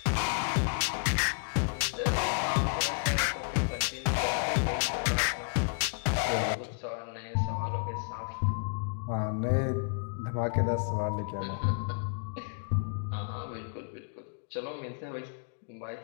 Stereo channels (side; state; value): right; silent; digital silence